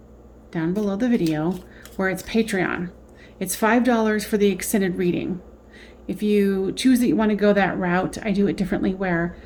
down below the video where it's Patreon. It's $5 for the extended reading. If you choose that you want to go that route, I do it differently, where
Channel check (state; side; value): identical; both; correlation 1.00